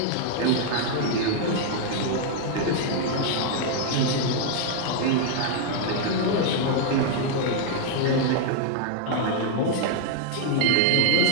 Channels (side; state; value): both; different; correlation 0.00